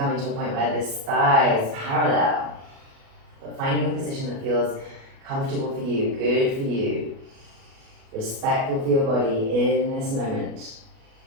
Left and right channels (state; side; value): late; left; 37 ms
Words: to a point where this thigh is parallel. But finding a position that feels comfortable for you, good for you, respectful for your body in this moment.